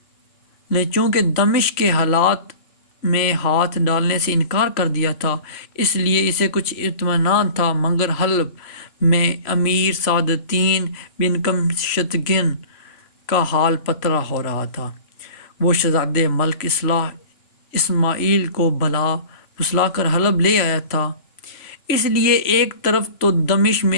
نے چونکہ دمشق کے حالات میں ہاتھ ڈالنے سے انکار کر دیا تھا، اس لیے اسے کچھ اطمینان تھا، مگر حلب میں امیر سعد الدین بن قمشتگن کا حال پترا ہو رہا تھا۔ وہ شہزادے ملک اصلاح اسماعیل کو بھلا پھسلا کر حلب لے آیا تھا، اس لیے ایک طرف تو دمشق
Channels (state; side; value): late; right; 3.0 ms